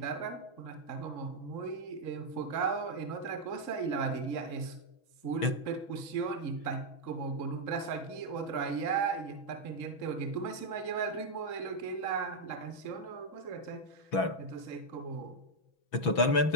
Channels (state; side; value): late; right; 6.1 ms